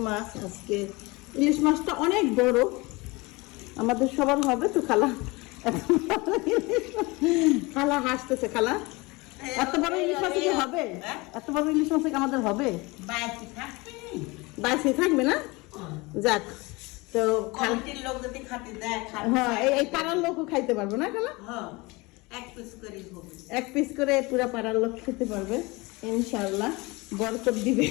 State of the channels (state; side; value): quieter; right; 24.3 dB